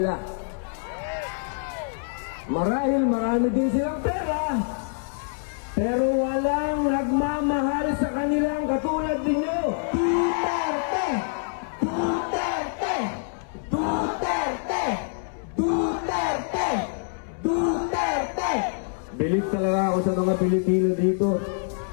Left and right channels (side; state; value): right; silent; 61 dB below the other